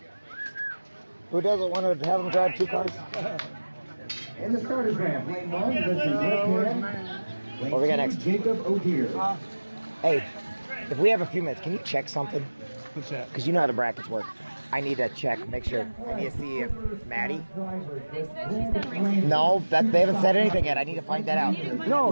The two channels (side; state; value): both; inverted; correlation -1.00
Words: Who doesn't want to have them drive 2 cars? In the starters ramp, lane 1, this is Rick. What we got next? Jacob O'Deer. Hey, if we have a few minutes, can you check something? What's that? Because you know how the brackets work. I need to check, make sure. I need to see if Maddie. No, that they haven't said anything yet. I need to find that out.